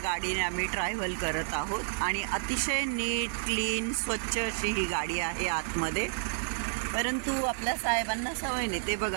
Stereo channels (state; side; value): silent; left; digital silence